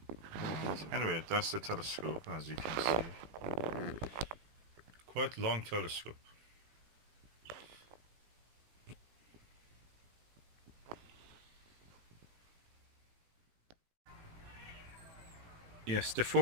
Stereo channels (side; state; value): left; late; 18 ms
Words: And anyway, that's the telescope, as you can see. Quite long telescope. Yes, the